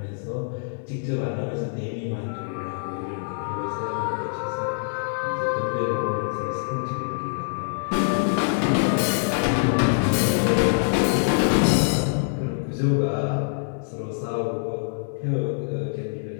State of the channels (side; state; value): right; silent; 62 dB below the other